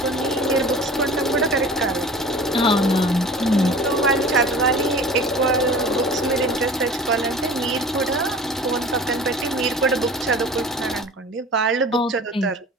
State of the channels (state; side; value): normal; both; correlation 0.41